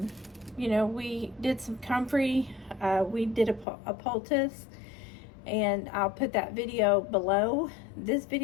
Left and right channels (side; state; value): right; drops out; at 3.7 s